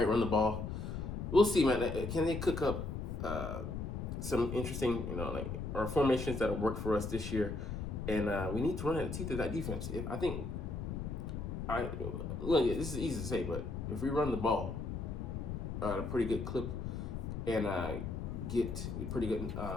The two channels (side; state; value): left; noise; rumble, 4 dB below the sound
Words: right, run the ball. We'll see, man. Can they cook up some interesting, our formations that'll work for us this year? And we need to run at the teeth of that defense. This is easy to say, but if we run the ball at a pretty good clip and get a pretty good